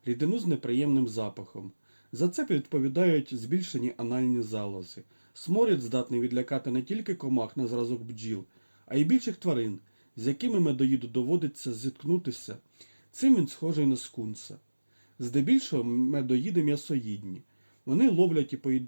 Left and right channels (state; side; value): inverted; both; correlation -1.00